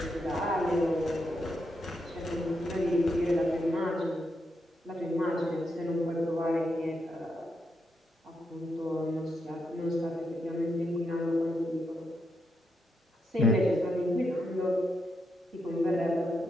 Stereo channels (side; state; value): both; normal; correlation 0.83